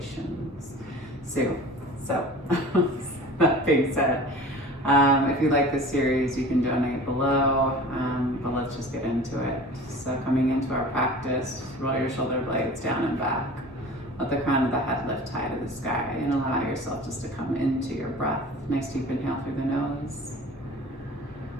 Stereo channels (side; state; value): both; normal; correlation 0.40